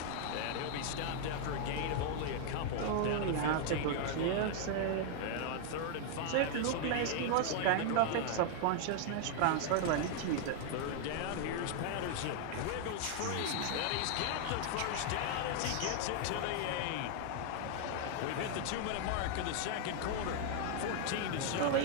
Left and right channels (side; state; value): both; different; correlation 0.00